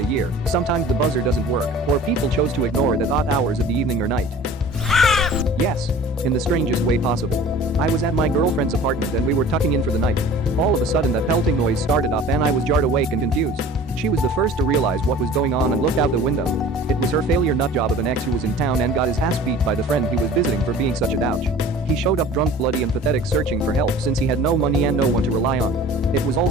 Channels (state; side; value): normal; both; correlation 0.44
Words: a year. Sometimes the buzzer doesn't work, or people chose to ignore it at odd hours of the evening or night. Yes, in the strangest way possible. I was at my girlfriend's apartment and we were tucking in for the night. All of a sudden that pelting noise started up and I was jarred awake and confused. She was the first to realize what was going on and looked out the window. It was her failure nutjob of an ex who was in town and got his ass beat by the friend he was visiting for being such a douche. He showed up drunk, bloody and pathetic, searching for help since he had no money and no one to rely on. It was all